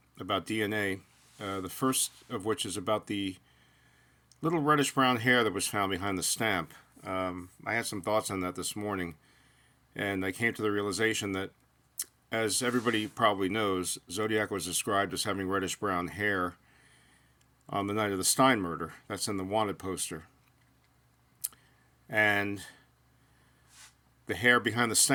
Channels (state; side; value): identical; both; correlation 1.00